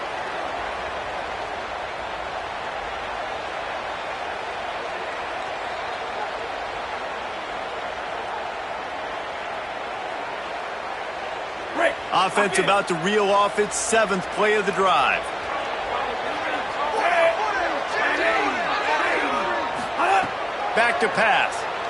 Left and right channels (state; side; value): identical; both; correlation 1.00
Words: Offense about to reel off its 7th play of the drive. Back to pass.